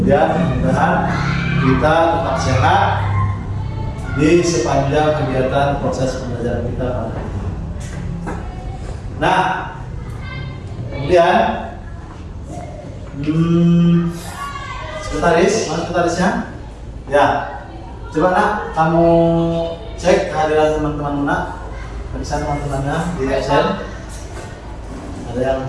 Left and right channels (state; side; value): identical; both; correlation 1.00